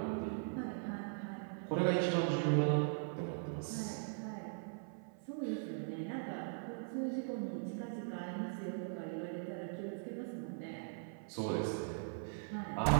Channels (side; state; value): left; silent; 51 dB below the other